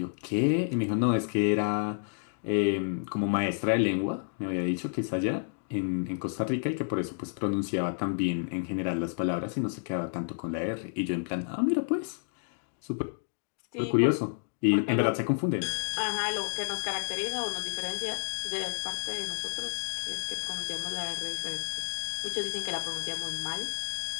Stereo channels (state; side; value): silent; right; digital silence